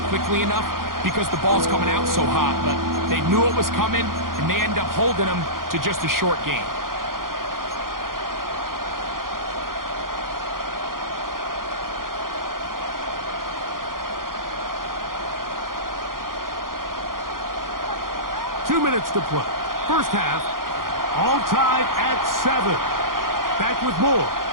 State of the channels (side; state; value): left; late; 0.91 ms